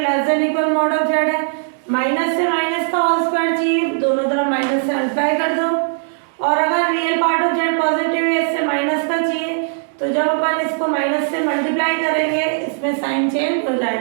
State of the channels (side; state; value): left; silent; 67 dB below the other